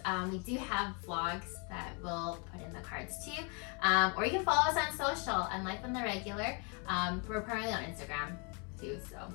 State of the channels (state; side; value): quieter; right; 34.4 dB